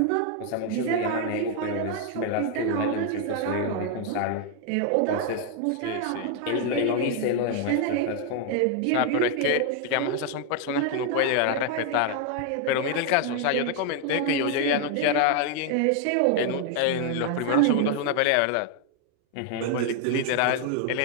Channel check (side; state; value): both; different; correlation 0.00